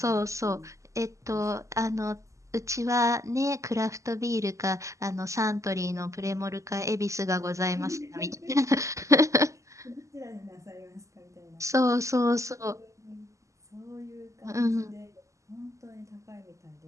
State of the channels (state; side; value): late; left; 0.15 ms